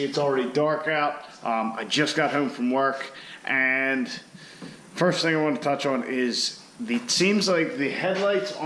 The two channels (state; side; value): identical; both; correlation 1.00